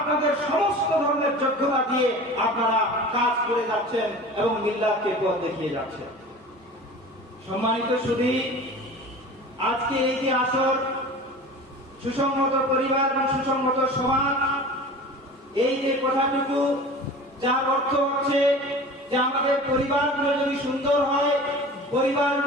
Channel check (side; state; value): both; normal; correlation 0.38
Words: সমস্ত ধরনের যোগ্যতা দিয়ে আপনারা কাজ করে যাচ্ছেন এবং মিল্লাতকে পথ দেখিয়ে যাচ্ছেন। সম্মানিত সুধী, আজকে এই যে আসর সুসংহত পরিবার এবং সুসংহত সমাজ, এই যে কথাটুকু যার অর্থ হচ্ছে যে আমাদের পরিবারগুলো যদি সুন্দর হয়,